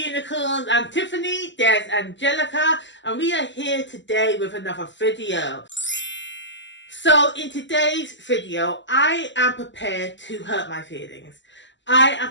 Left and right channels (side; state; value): right; late; 0.54 ms